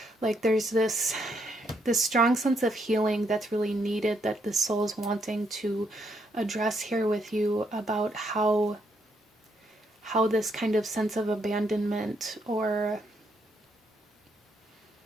like there's this strong sense of healing that's really needed that the soul is wanting to address here with you, about how this kind of sense of abandonment or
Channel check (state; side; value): normal; both; correlation 0.75